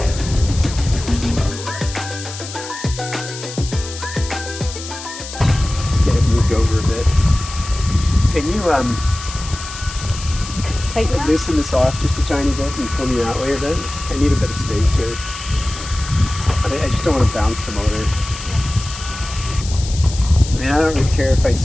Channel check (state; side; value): noise; left; hiss, 11 dB below the sound